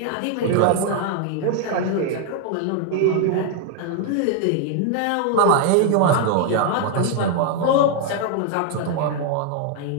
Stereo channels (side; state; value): both; different; correlation 0.00